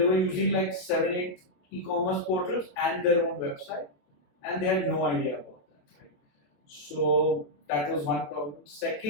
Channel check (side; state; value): right; late; 27 ms